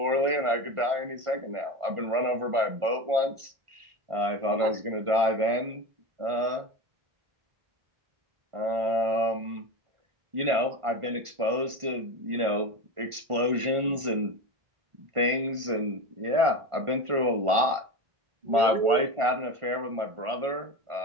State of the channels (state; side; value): late; left; 1.5 ms